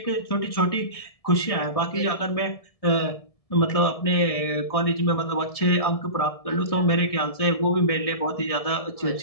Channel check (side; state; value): right; late; 1.7 ms